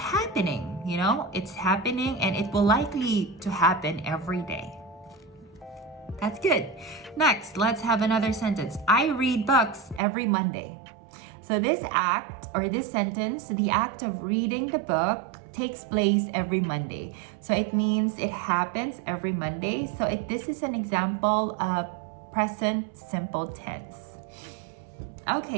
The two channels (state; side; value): drops out; left; at 10.0 s